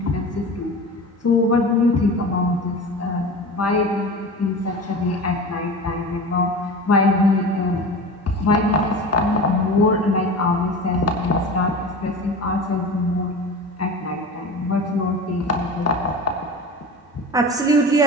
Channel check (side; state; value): both; normal; correlation 0.32